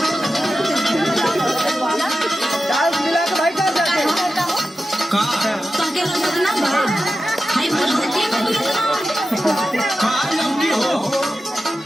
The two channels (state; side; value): normal; both; correlation 0.92